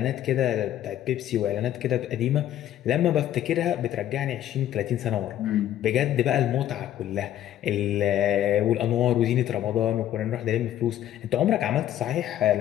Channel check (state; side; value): quieter; right; 11.9 dB